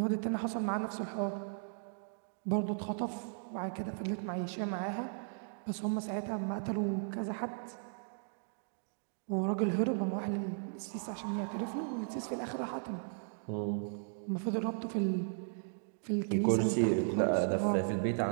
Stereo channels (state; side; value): silent; left; digital silence